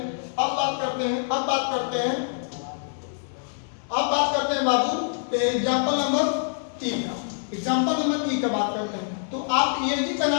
अब बात करते हैं बाबू एग्जाम्पल नंबर 3 का। एग्जाम्पल नंबर 3 का बात करते हैं। तो आप एजी का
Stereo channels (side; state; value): right; silent; 61 dB below the other